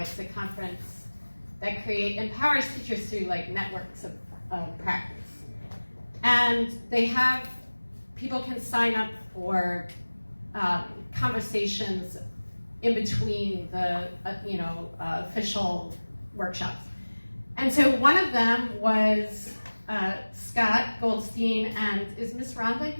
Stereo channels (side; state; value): both; inverted; correlation -1.00